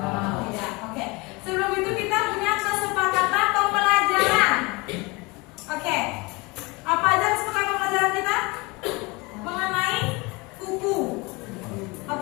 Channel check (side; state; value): right; quieter; 25.7 dB